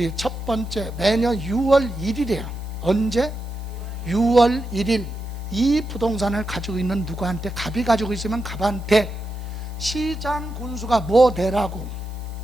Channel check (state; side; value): noise; right; hiss, 27 dB below the sound